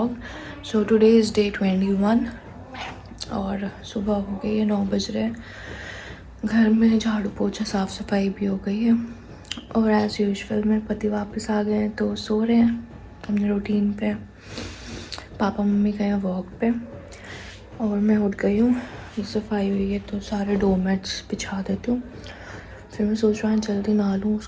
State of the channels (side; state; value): both; identical; correlation 1.00